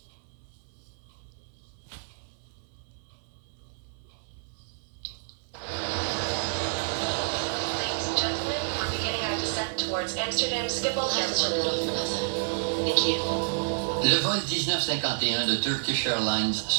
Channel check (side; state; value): left; silent; 58 dB below the other